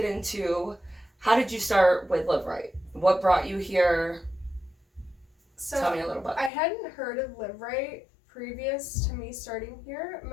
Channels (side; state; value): right; drops out; at 6.5 s